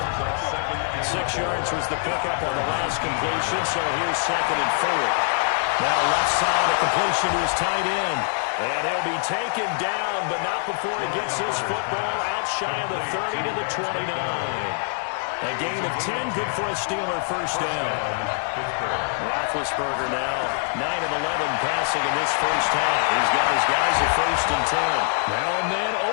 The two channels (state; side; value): silent; right; digital silence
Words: yards was the pickup on the last completion, so here's 2nd and 4. Now left side, a completion to his tight end. And he'll be taken down, but not before he gets this football out shy of the 30 to the 29. A gain of 10, good for a Steeler first down. Roethlisberger now 9 of 11 passing in this first half. He's got his guys at 1st and 10. Now and then